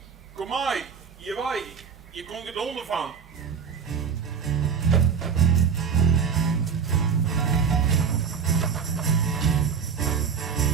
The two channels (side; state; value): left; quieter; 6.5 dB